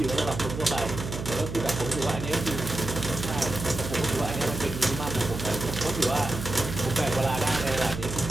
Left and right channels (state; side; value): noise; right; hum, 7 dB below the sound